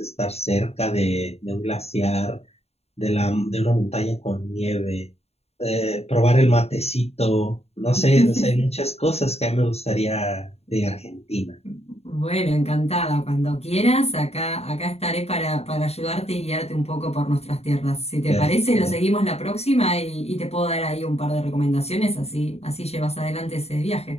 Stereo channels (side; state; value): right; late; 0.30 ms